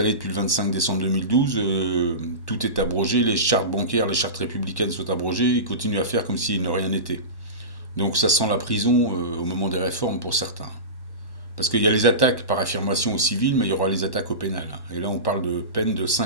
depuis le 25 décembre 2012. Tout est abrogé. Les chartes bancaires, les chartes républicaines sont abrogées. Ils continuent à faire comme s'il ne rien n'était. Donc ça sent la prison au moment des réformes pour certains. Parce qu'il y a les attaques par affirmation au civil, mais il y aura les attaques au pénal. Et là, on parle de peine de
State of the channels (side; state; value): right; late; 1.1 ms